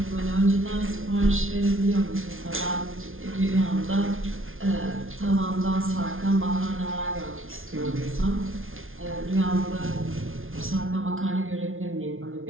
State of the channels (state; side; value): late; left; 0.60 ms